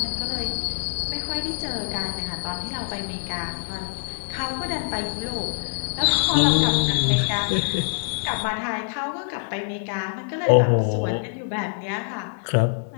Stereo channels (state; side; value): silent; right; digital silence